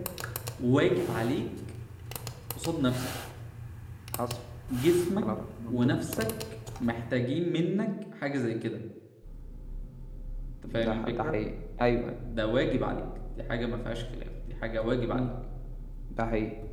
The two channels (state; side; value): identical; both; correlation 1.00